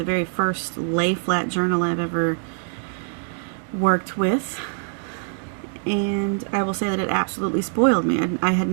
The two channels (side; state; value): left; silent; 63 dB below the other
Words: very first lay flat journal I've ever worked with, and I will say that it absolutely spoiled me. I had